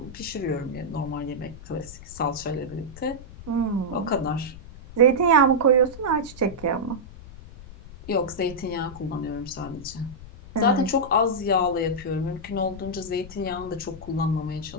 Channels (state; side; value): noise; left; rumble, 16 dB below the sound